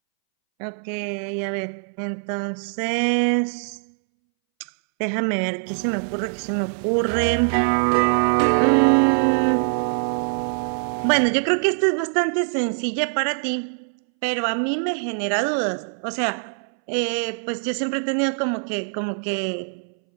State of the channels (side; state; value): left; silent; 63 dB below the other